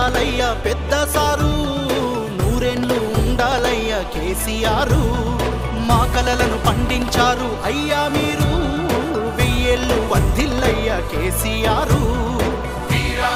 పెద్ద సారు, నూరేళ్ళు ఉండాలయ్య కేసీఆర్. మా కలలను పండించారు అయ్యా మీరు, వెయ్యేళ్ళు వర్ధిల్లయ్య కేసీఆర్.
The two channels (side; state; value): both; identical; correlation 1.00